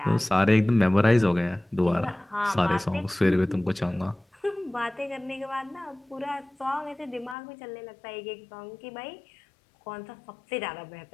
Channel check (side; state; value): right; drops out; at 7.4 s